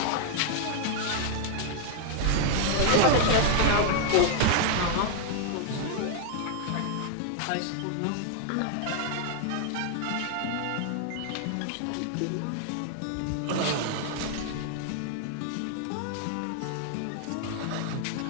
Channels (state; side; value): different; both; correlation 0.00